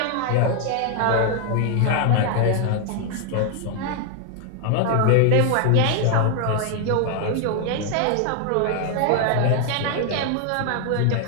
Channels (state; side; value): different; both; correlation 0.00